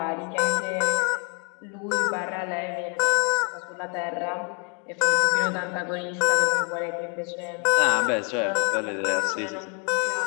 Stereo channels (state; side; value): quieter; right; 38.1 dB